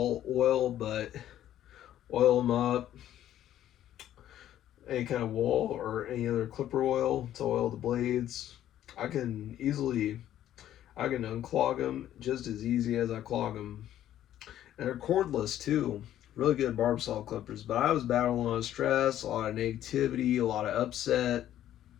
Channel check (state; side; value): quieter; right; 12.0 dB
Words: oil, but oil them up. Any kind of wall or any other clipper oil to oil the blades. I can unclog them just as easy as I clog them. And they're cordless too. Really good Barbasol clippers. But I was battling a lot of stress, a lot of negativity, a lot of upset.